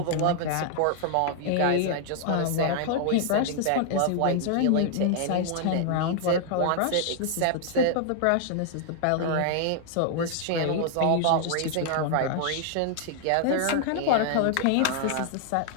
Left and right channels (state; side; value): different; both; correlation 0.00